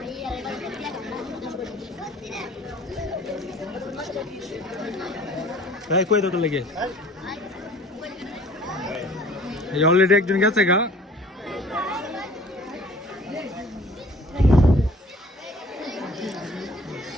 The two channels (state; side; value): normal; both; correlation 0.51